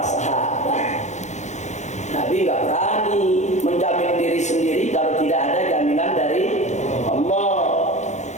sahabat. Nabi nggak berani menjamin diri sendiri kalau tidak ada jaminan dari Allah.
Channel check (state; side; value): late; right; 0.34 ms